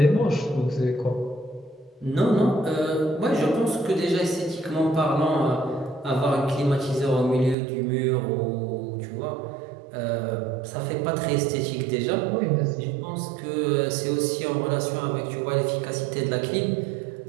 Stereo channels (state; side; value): drops out; left; at 7.6 s